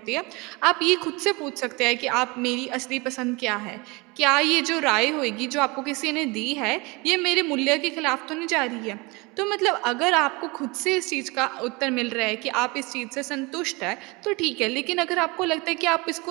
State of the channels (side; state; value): left; quieter; 25.9 dB